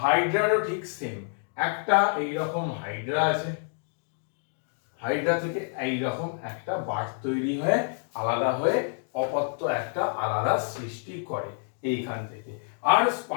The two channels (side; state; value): right; silent; 59 dB below the other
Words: ঠিক সেম। একটা এইরকম হাইড্রা আছে, হাইড্রা থেকে এইরকম একটা বার্ড তৈরি হয়ে আলাদা হয়ে অপত্য একটা আলাদা সৃষ্টি করে এইখান থেকে। আর